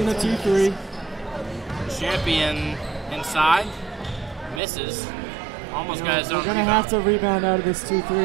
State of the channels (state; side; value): drops out; left; at 4.6 s